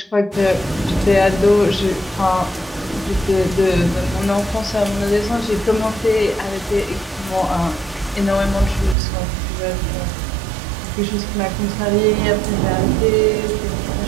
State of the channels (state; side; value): drops out; left; at 9.0 s